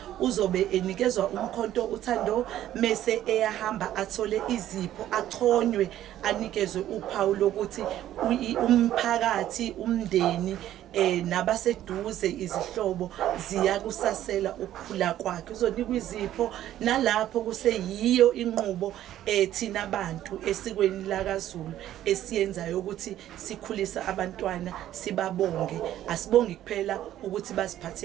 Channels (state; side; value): quieter; left; 12.5 dB